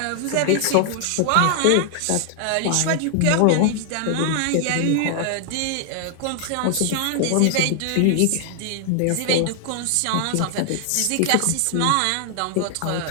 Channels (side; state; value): both; different; correlation 0.00